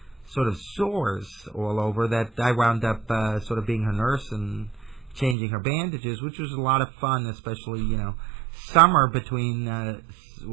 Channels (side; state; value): left; drops out; at 5.4 s